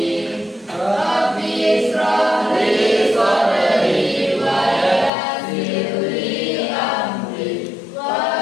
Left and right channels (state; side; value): drops out; right; at 5.1 s